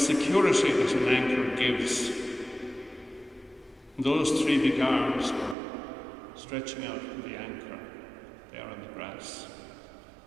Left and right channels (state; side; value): drops out; left; at 5.6 s